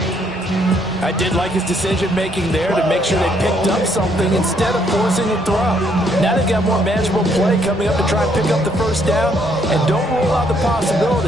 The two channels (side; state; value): both; normal; correlation 0.69